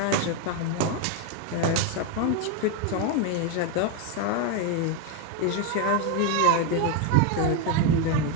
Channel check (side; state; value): both; different; correlation 0.02